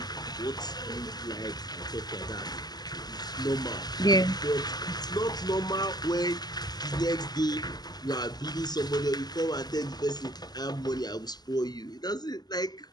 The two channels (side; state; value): right; late; 0.20 ms